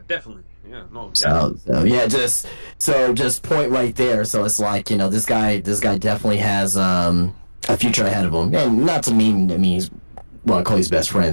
definitely. Yeah, no. So yeah, just point right there. So it's like, this guy definitely has a future ahead of him, and not to mean he's one of Cody's best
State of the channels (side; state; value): both; inverted; correlation -1.00